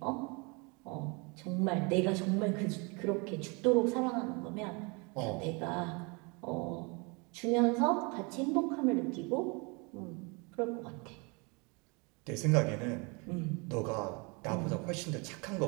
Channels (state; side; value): quieter; left; 30.4 dB